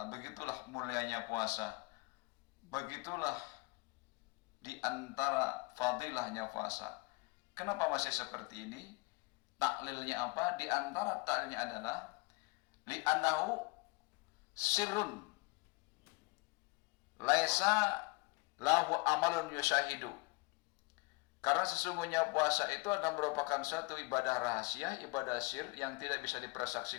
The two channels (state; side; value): quieter; right; 26.4 dB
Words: begitulah mulianya puasa, begitulah di antara fadilahnya puasa. Kenapa masih seperti ini? Taklilnya apa? Di antara taklilnya adalah li'annahu sirrun laisa lahu amalun yushahidu. Karena sesungguhnya puasa itu adalah merupakan suatu ibadah rahasia, ibadah sir yang tidak bisa